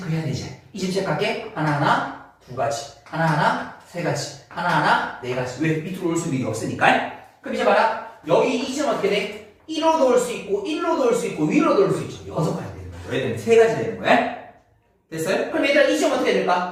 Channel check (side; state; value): both; identical; correlation 1.00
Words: 되지. 이 지점 체크할게. 하나하나 두 가지, 하나하나 세 가지, 하나하나 네 가지. 왜? 밑으로 올 수 있는 게 없으니까. 그럼 이제 봐라. 여기 이 지점 어떻게 돼? 1로 놓을 수 있고 1로 놓을 수 있고 위로 놓을 수 있죠. 여섯 가지 되는 거야. 왜 되면 세 가지 되는 거야. 됐어요? 그럼 얘들아 이 지점 어떻게